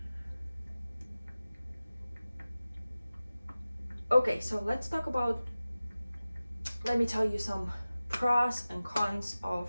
okay, so let's talk about let me tell you some pros and cons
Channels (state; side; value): inverted; both; correlation -0.97